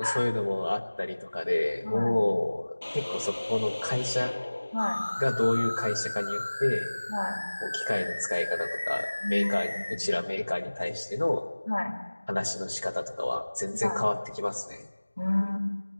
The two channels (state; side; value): inverted; both; correlation -1.00